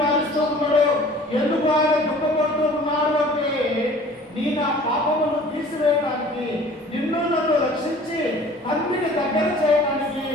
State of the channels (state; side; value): normal; both; correlation 0.48